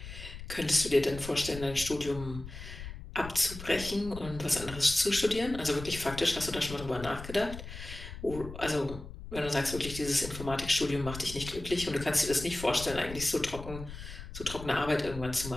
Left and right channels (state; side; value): noise; left; rumble, 11 dB below the sound